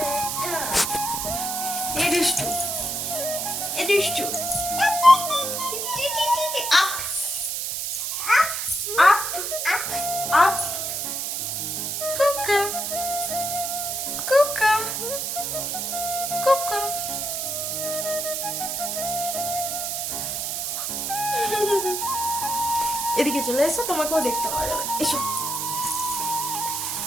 এ দুষ্টু, এ দুষ্টু, আপ আপ আপ, কুকা কুকা কুকা। এদিকে চলে এসো, তোমাকেও দেখতে পাওয়া যাবে, এসো।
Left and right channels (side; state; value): right; noise; hiss, 2 dB below the sound